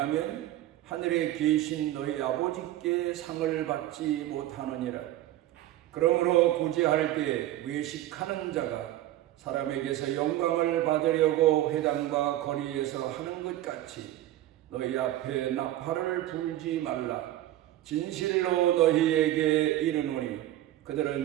하늘에 계신 너희 아버지께 상을 받지 못하느니라. 그러므로 구제할 때 외식하는 자가 사람에게서 영광을 받으려고 회당과 거리에서 하는 것 같이 너희 앞에 나팔을 불지 말라. 진실로 너희에게 이르노니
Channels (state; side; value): quieter; left; 14.3 dB